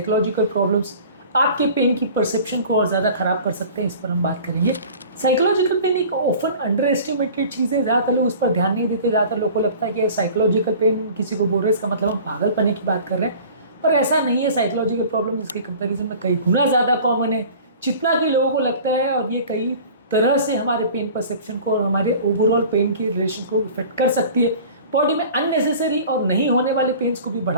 प्रॉब्लम्स आपके पेन की परसेप्शन को और ज़्यादा ख़राब कर सकते हैं, इस पर हम बात करेंगे। साइकोलॉजिकल पेन एक ऑफन अंडर एस्टिमेटेड चीज़ है, ज़्यादातर लोग उस पर ध्यान नहीं देते। ज़्यादातर लोग को लगता है कि साइकोलॉजिकल पेन किसी को बोल रहे हैं इसका मतलब हम पागलपने की बात कर रहे हैं, पर ऐसा नहीं है। साइकोलॉजिकल प्रॉब्लम इसके कंपेरिजन में कई गुना ज़्यादा कॉमन है जितना कि लोगों को लगता है, और ये कई तरह से हमारे पेन परसेप्शन को और हमारे ओवरऑल पेन के रिलेशन को इफेक्ट कर सकती है। बॉडी में अननेसेसरी और नहीं होने वाले पेन्स को भी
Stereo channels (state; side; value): inverted; both; correlation -0.43